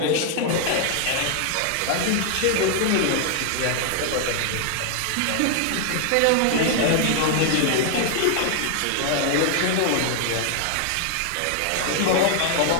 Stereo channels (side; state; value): both; different; correlation 0.00